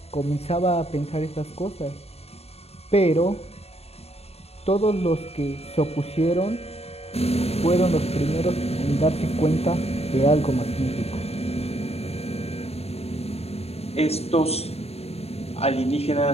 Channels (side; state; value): right; late; 0.30 ms